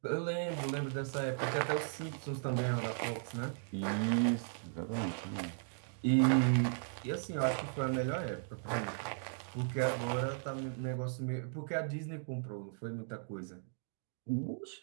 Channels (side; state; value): left; silent; digital silence